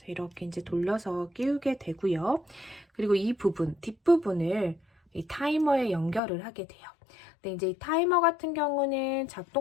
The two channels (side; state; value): right; drops out; at 6.2 s